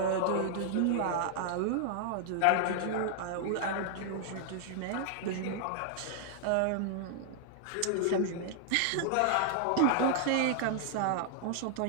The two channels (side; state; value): both; different; correlation -0.01